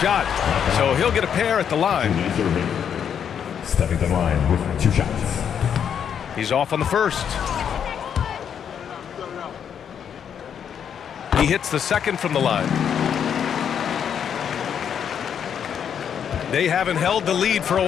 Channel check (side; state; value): right; quieter; 8.2 dB